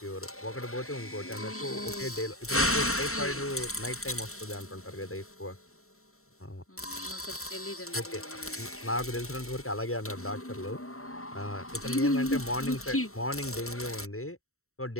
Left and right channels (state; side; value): late; right; 0.63 ms